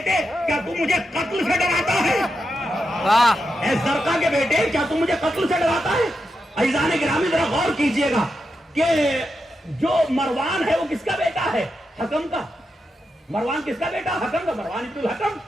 کیا تو مجھے قتل سے ڈراتا ہے؟ اے زرقا کے بیٹے کیا تو مجھے قتل سے ڈراتا ہے؟ عزیزان گرامی ذرا غور کیجئے گا کہ جو مروان ہے وہ کس کا بیٹا ہے؟ حکم کا۔ مروان کس کا بیٹا؟ حکم کا۔ مروان ابن الحکم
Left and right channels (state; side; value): normal; both; correlation 0.87